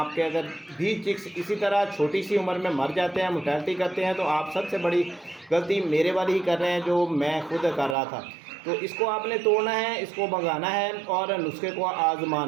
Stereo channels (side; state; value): left; drops out; at 8.0 s